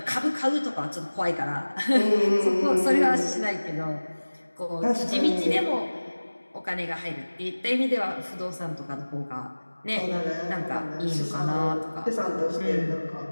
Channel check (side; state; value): both; inverted; correlation -1.00